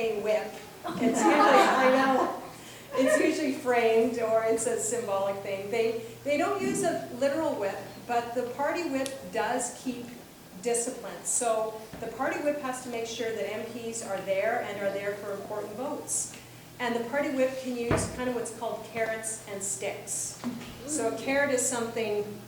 whip. It's usually, I know, it's usually framed, or it's a symbolic thing. They don't use a literal whip, but the party whip does keep discipline. So the party whip has to make sure that MPs are there and are there for important votes. And the party whip can use kind of what's called carrots and sticks. So a carrot is something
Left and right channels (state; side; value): identical; both; correlation 1.00